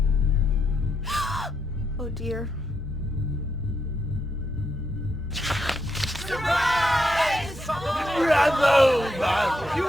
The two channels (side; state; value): both; normal; correlation 0.81